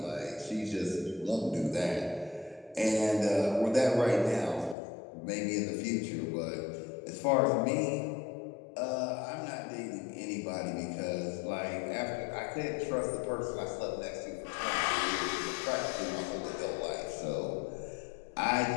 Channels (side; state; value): right; drops out; at 4.8 s